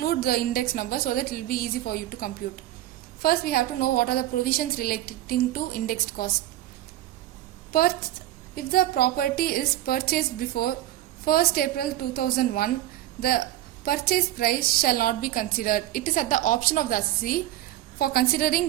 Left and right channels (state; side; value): quieter; left; 14.0 dB